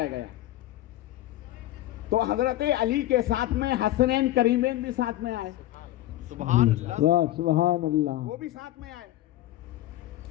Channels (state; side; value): quieter; right; 14.9 dB